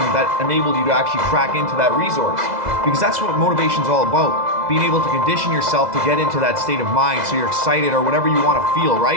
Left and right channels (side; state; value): left; late; 2.0 ms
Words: that enabled you to actually crack into that resource? Because that's what motivation is all about. Being able to condition yourself to get into that state of mind so you're excited or whatever you want to feel,